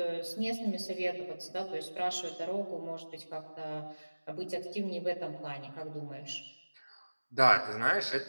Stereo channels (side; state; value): both; inverted; correlation -1.00